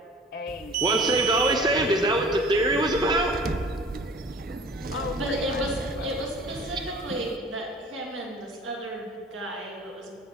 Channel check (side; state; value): both; normal; correlation 0.46